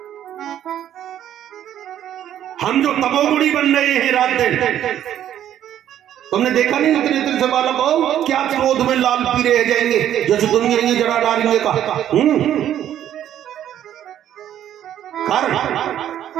हम जो तमोगुणी बन रहे हैं रात दिन, तुमने देखा नहीं इतने दिन से बालक हो क्या क्रोध में लाल पीले रह जाएंगे जैसे दुनिया ये जरा डालेंगे का कारण।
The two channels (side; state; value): left; quieter; 11.0 dB